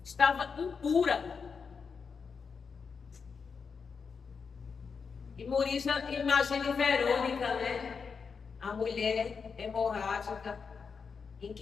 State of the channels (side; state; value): right; quieter; 5.6 dB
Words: estava impura. E imagine Verônica, né? A mulher hemorrágica, em